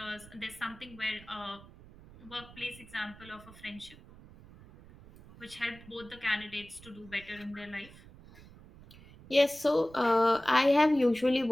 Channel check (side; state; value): right; noise; rumble, 20 dB below the sound